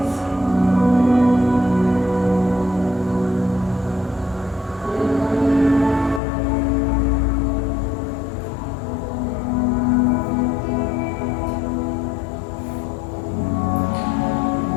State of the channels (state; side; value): drops out; right; at 6.2 s